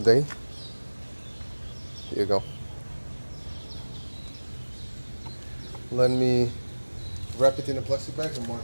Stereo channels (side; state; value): both; inverted; correlation -1.00